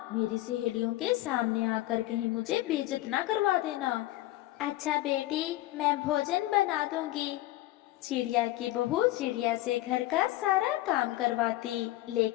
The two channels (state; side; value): quieter; right; 16.4 dB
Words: मेरी सहेलियों के सामने आकर कहीं मुझे बेइज्जत ना करवा देना। अच्छा बेटी, मैं भोजन बना दूंगी। चिड़िया की बहू चिड़िया से घर का सारा काम करवाती,